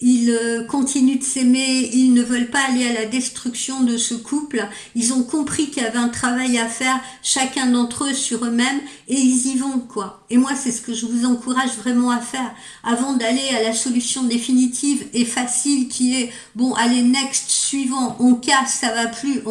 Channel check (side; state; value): both; identical; correlation 1.00